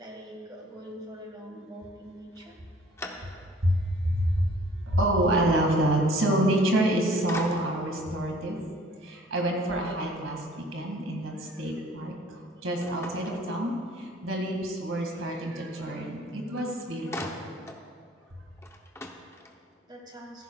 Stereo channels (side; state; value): both; normal; correlation 0.54